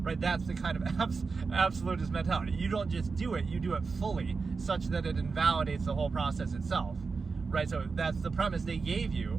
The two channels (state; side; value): quieter; left; 4.6 dB